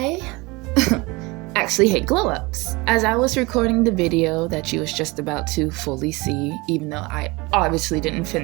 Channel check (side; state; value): left; quieter; 24.3 dB